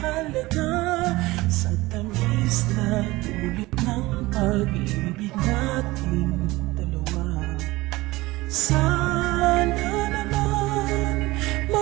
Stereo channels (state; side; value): quieter; left; 20.0 dB